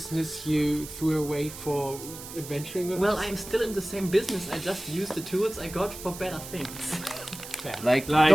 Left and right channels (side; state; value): right; noise; hiss, 12 dB below the sound